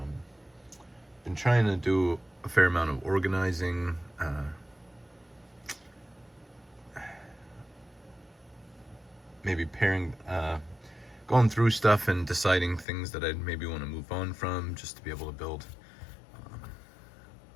been trying to do a fair amount of organizing. Maybe going through stuff and deciding things that I'd maybe want to move on from, just to be able to build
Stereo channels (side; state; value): right; drops out; at 12.9 s